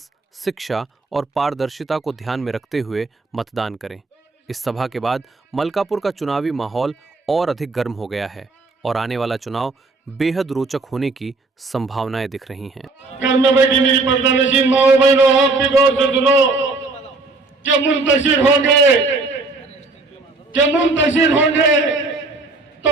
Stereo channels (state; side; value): quieter; left; 3.5 dB